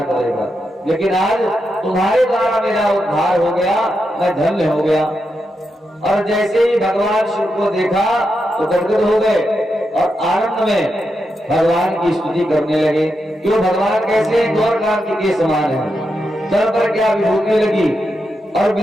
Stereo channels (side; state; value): both; normal; correlation 0.86